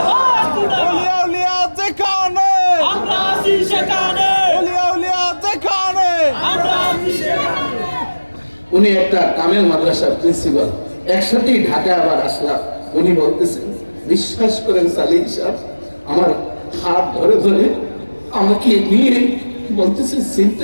ওলিয়া উলিয়া যেখানে, আমরা আছি সেখানে, ওলিয়া উলিয়া যেখানে। উনি একটা কামেল মাদ্রাসার প্রিন্সিপাল, একসাথেই ঢাকা আবার আসলাম। উনি বলতেছেন, বিশ্বাস করেন সালিম সাহেব, আমার হাত ধরে ধরে আমাকে নিয়ে বলতেছে,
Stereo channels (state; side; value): inverted; both; correlation -1.00